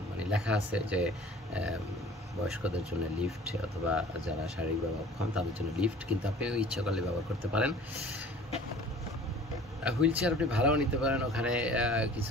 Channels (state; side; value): normal; both; correlation 0.47